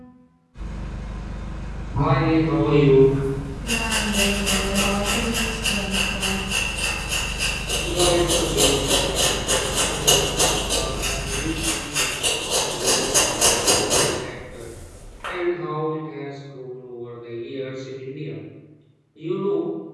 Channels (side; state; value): both; identical; correlation 1.00